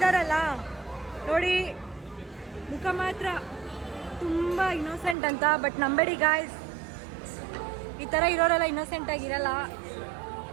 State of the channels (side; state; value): left; drops out; at 5.2 s